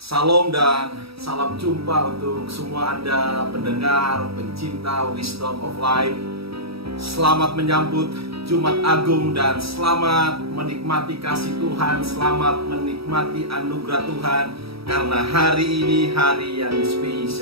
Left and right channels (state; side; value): late; left; 0.77 ms